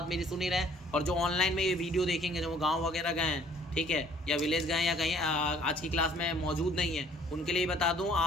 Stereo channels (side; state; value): both; normal; correlation 0.57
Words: मेरी सुन ही रहे हैं, और जो ऑनलाइन में ये वीडियो देखेंगे, जो वो गांव वगैरह गए हैं, ठीक है, या विलेज गए या कहीं आज की क्लास में मौजूद नहीं है, उनके लिए बता दूं,